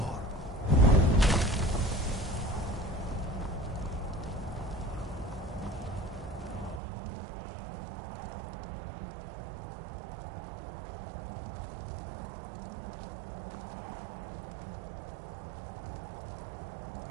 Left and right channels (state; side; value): drops out; left; at 6.8 s